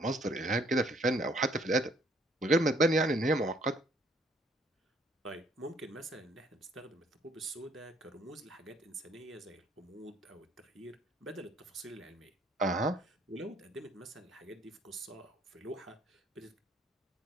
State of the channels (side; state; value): both; normal; correlation 0.64